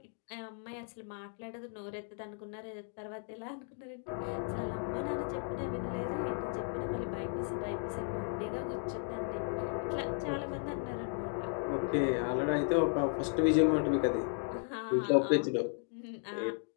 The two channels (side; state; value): right; silent; 54 dB below the other